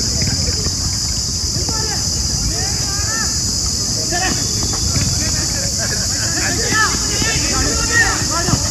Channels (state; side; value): identical; both; correlation 1.00